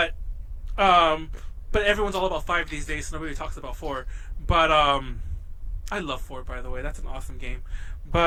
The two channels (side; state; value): both; identical; correlation 1.00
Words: everyone's all about 5 these days, so nobody talks about 4. But I love 4, by the way. That's an awesome game.